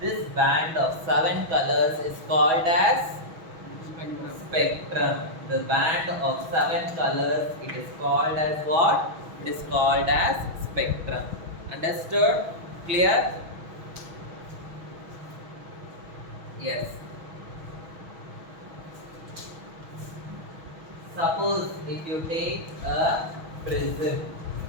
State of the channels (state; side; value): late; left; 6.2 ms